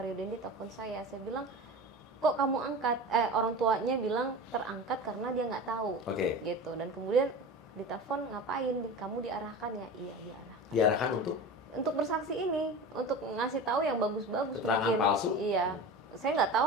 Dendi telepon saya." Saya bilang, "Kok kamu angkat?" Orang tuanya bilang terangkat karena dia nggak tahu. Gitu. Dan kemudian ditelepon, "Ngapain? Kamu diarahkan ya?" "Iya, diarahkan." Diarahkan untuk bersaksi ini, untuk ngasih tahu yang bagus-bagus mungkin. Palsu? Iya. Saya nggak tahu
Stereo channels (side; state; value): both; normal; correlation 0.32